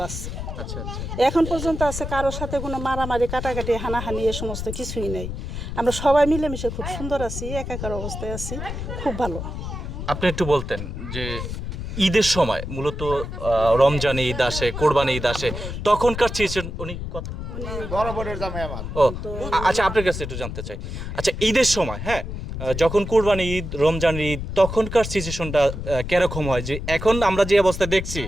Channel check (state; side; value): noise; left; rumble, 6 dB below the sound